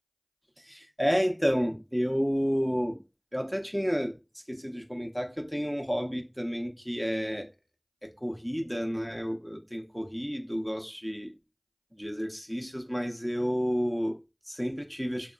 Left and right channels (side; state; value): both; identical; correlation 1.00